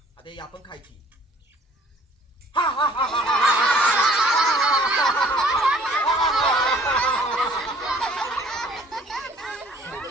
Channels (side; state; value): both; normal; correlation 0.55